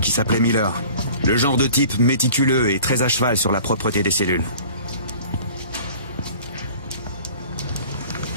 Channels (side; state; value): both; inverted; correlation -0.46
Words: qui s'appelait Miller. Le genre de type méticuleux et très à cheval sur la propreté des cellules.